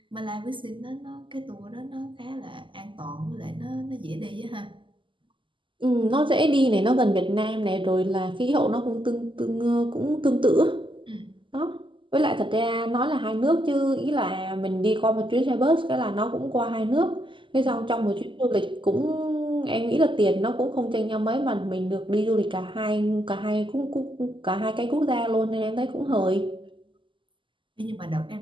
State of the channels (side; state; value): left; late; 0.24 ms